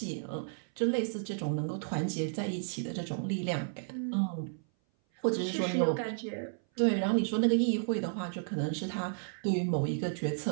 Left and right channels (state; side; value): silent; left; 56 dB below the other